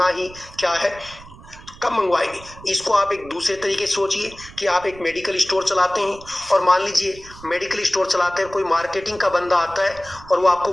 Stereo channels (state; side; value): noise; right; rumble, 19 dB below the sound